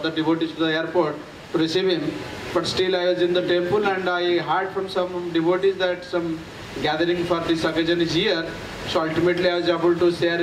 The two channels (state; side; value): identical; both; correlation 1.00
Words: devotees to the airport to receive him. But still I was in the temple and I heard from some devotees that some gathering for this occasion is here. So ultimately I was able to share